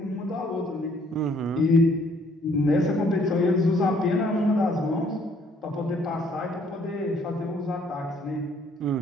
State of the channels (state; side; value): normal; both; correlation 0.63